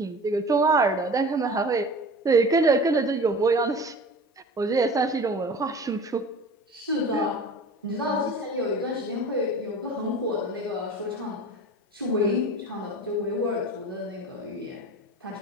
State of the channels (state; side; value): normal; both; correlation 0.38